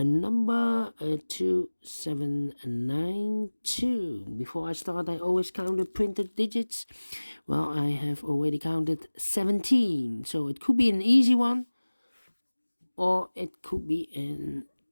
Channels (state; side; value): inverted; both; correlation -1.00